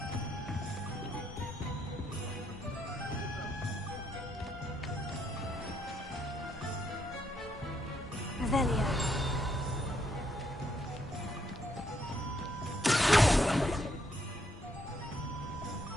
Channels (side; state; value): both; normal; correlation 0.74